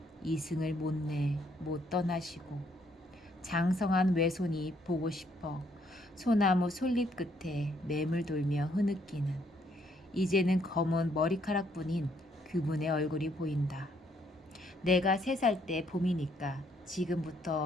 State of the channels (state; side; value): normal; both; correlation 0.69